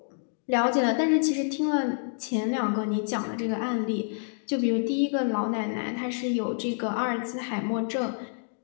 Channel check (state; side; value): silent; right; digital silence